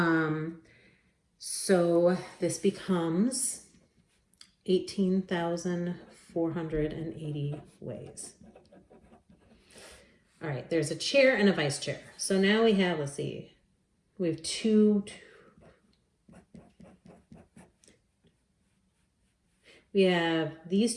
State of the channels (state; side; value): identical; both; correlation 1.00